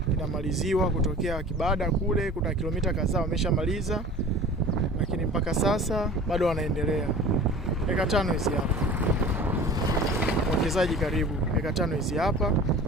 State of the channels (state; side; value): normal; both; correlation 0.41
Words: inamaliziwa kutokea Kibada kule, kuna kilomita kadhaa wameshamaliza, lakini mpaka sasa bado wanaendelea. Eka 5 hizi hapa. Mwekezaji karibu. Eka 5 hizi hapa